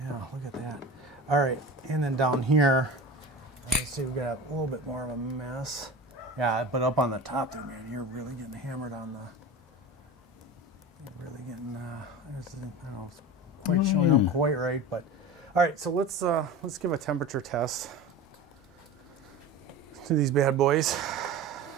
at that. All right, and then down here, let's see, we got a little bit more of a mess. Yeah, but up on the top there, man, you're really getting hammered on the, I don't know, it's quite showing up quite right, but All right, so let's give a temperature test to these bad boys.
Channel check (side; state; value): both; normal; correlation 0.32